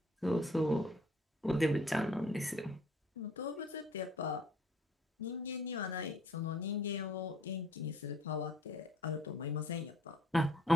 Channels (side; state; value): both; normal; correlation 0.58